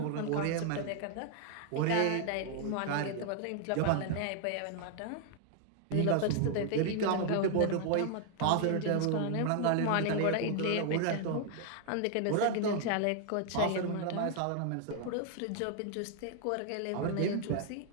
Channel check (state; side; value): different; both; correlation 0.00